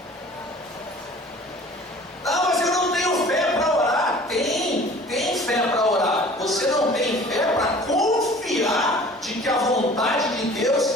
Ah, mas eu não tenho fé para orar. Tem fé para orar. Você não tem fé para confiar de que a vontade de Deus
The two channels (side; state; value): both; normal; correlation 0.47